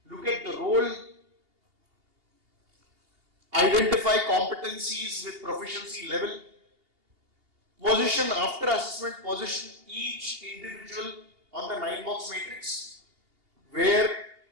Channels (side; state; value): left; late; 2.8 ms